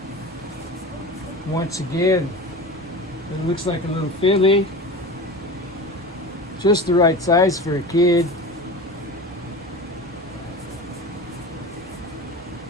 Once again, it looks like a little filly. Just the right size for a kid.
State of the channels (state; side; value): normal; both; correlation 0.32